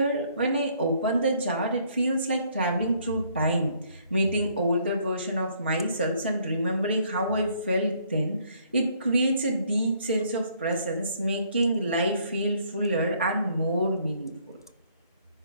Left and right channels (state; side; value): inverted; both; correlation -0.65